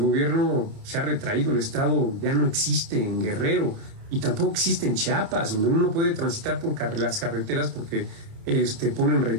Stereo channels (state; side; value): late; left; 29 ms